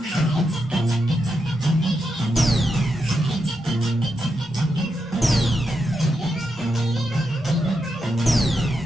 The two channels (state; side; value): normal; both; correlation 0.85